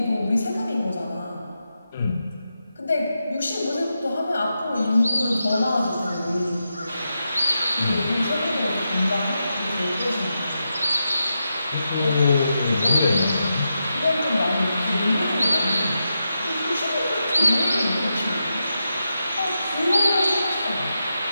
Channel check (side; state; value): both; inverted; correlation -0.87